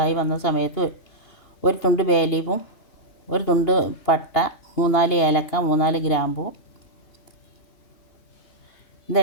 വന്ന സമയത്ത് ഒരു തുണ്ട് ബേ ലീഫും ഒരു തുണ്ട് പട്ട, 3-4 ഏലക്ക, 3-4 ഗ്രാമ്പൂ,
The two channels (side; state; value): right; late; 2.8 ms